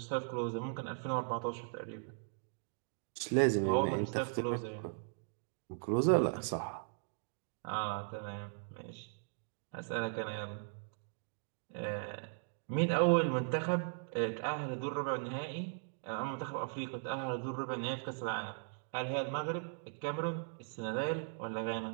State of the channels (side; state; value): left; silent; digital silence